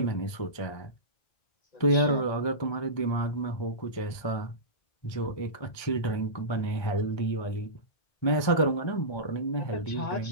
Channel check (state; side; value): late; right; 1.3 ms